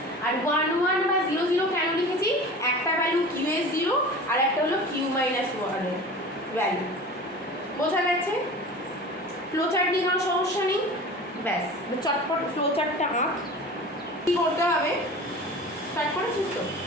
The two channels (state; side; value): normal; both; correlation 0.37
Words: আর 1 1 বা 0 0 কেন লিখেছি, একটা ভ্যালু কিউ এর 0 আর একটা হলো কিউ মাইনাস 1 এর ভ্যালু, বোঝা গেছে। ফ্লোচার্ট নিয়ে কোনো সমস্যা নেই, ব্যাস চটপট ফ্লোচার্টটা আঁক। কী করতে হবে, স্টার্ট করেছিস তো?